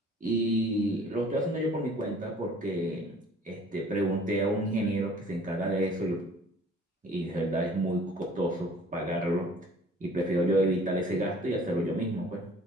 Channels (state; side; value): normal; both; correlation 0.52